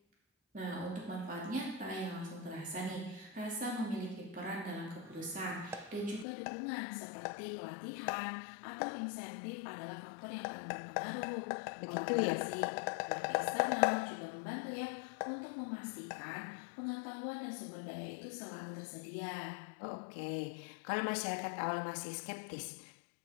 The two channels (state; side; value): drops out; right; at 6.2 s